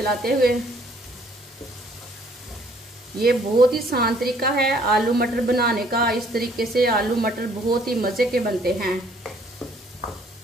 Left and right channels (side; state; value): both; normal; correlation 0.61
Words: हुए। ये बहुत ही आसान तरीका है आलू मटर बनाने का। इस तरीके से आलू मटर बहुत ही मजे के बनते हैं।